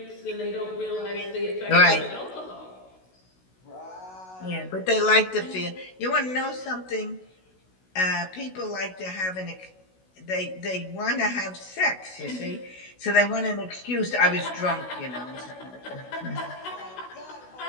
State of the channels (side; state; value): right; late; 16 ms